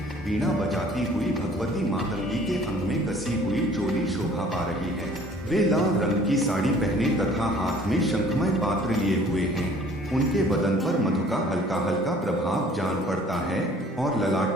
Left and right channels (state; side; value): normal; both; correlation 0.53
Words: वीणा बजाती हुई भगवती मातंगी के अंग में कसी हुई चोली शोभा पा रही है। वे लाल रंग की साड़ी पहने तथा हाथ में शंखमय पात्र लिए हुए हैं। उनके बदन पर मधु का हल्का हल्का प्रभाव जान पड़ता है और